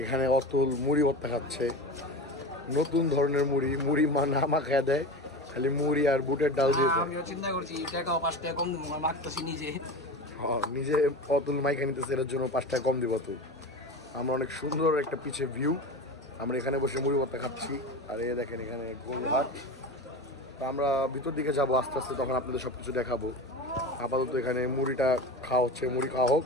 এখানে অতুল মুড়ি ভর্তা খাচ্ছে। নতুন ধরনের মুড়ি না মাখায় দেয়, খালি মুড়ি আর বুটের ডাল দিয়ে। আমিও চিন্তা করছি টাকা 5 টাকা কম দেবো, মাখতেছি নিজে। নিজে অতুল মাইকা নিতেছে, এর জন্য 5 টাকা কম দিব তো। আমরা অনেক সুন্দর একটা পিছে ভিউ, আমরা এখানে বসে মুড়ি ভর্তা খাচ্ছি। আর এই দেখেন এখানে গোলঘাট। তো আমরা ভিতর দিকে যাবো আস্তে আস্তে, তখন আপনাদের সব কিছু দেখাবো। আপাতত এখানে মুড়িটা খাওয়া হচ্ছে, মুড়ি খাওয়া হোক,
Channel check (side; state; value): both; normal; correlation 0.28